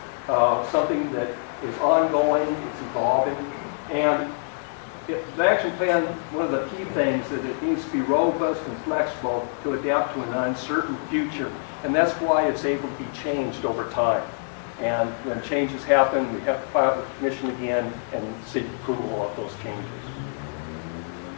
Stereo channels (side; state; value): right; silent; digital silence